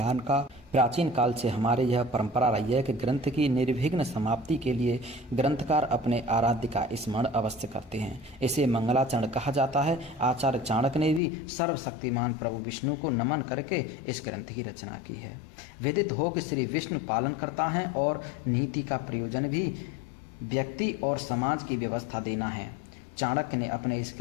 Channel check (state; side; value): drops out; right; at 11.2 s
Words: का प्राचीन काल से हमारे यह परंपरा रही है कि ग्रंथ की निर्विघ्न समाप्ति के लिए ग्रंथकार अपने आराध्य का स्मरण अवश्य करते हैं। इसे मंगलाचरण कहा जाता है। आचार्य चाणक्य ने भी सर्वशक्तिमान प्रभु विष्णु को नमन करके इस ग्रंथ की रचना की है। विदित हो कि श्री विष्णु पालन करता है और नीति का प्रयोजन भी व्यक्ति और समाज की व्यवस्था देना है। चाणक्य ने अपने इस